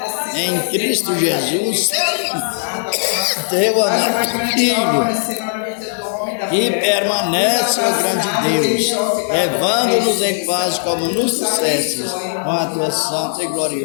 em Cristo Jesus, teu amado Filho, que permanece, ó grande Deus, levando-nos em paz como nos dissestes, com a tua santa e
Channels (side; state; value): right; silent; 66 dB below the other